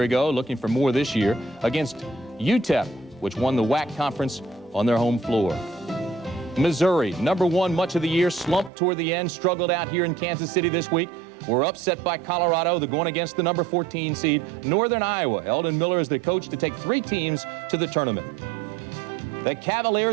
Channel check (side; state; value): left; drops out; at 8.7 s